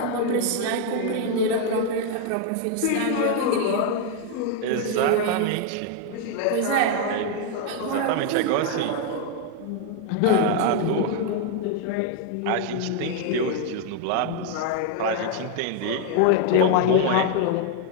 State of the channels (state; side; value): different; both; correlation 0.00